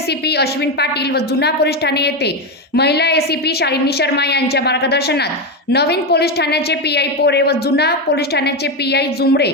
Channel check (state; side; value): normal; both; correlation 0.11